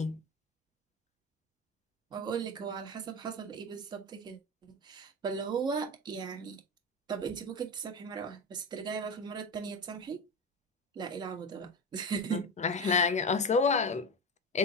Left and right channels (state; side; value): normal; both; correlation 0.21